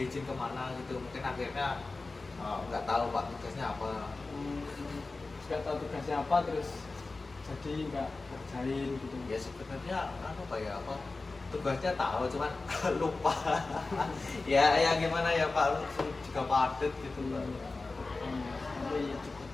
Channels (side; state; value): right; quieter; 3.6 dB